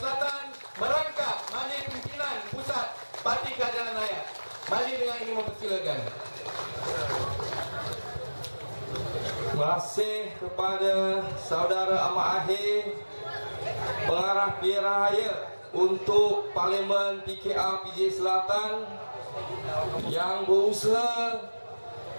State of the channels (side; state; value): both; inverted; correlation -1.00